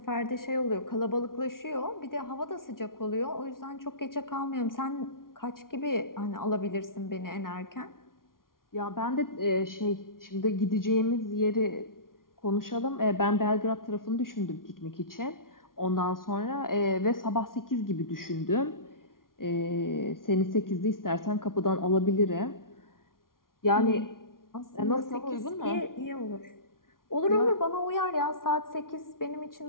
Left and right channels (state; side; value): late; right; 0.92 ms